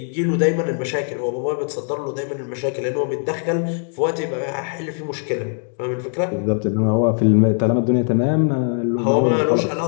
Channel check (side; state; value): right; silent; 57 dB below the other